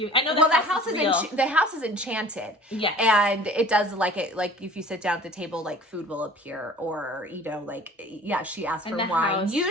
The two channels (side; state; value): both; normal; correlation 0.47